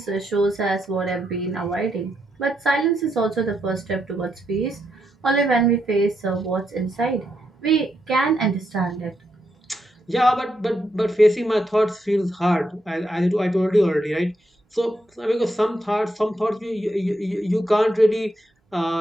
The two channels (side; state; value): both; normal; correlation 0.81